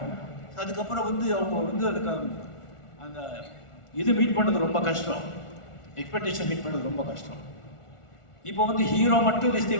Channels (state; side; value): late; right; 1.4 ms